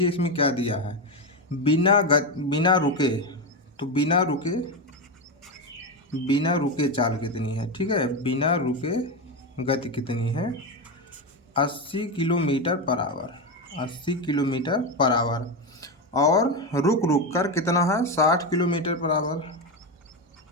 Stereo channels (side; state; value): both; normal; correlation 0.13